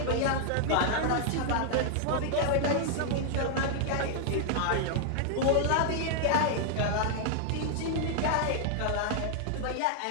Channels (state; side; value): different; both; correlation -0.01